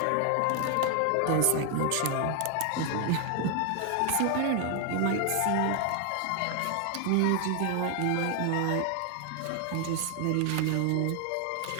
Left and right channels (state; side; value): different; both; correlation 0.00